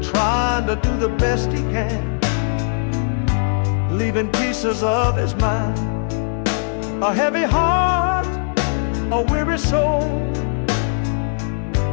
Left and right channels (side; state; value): right; silent; digital silence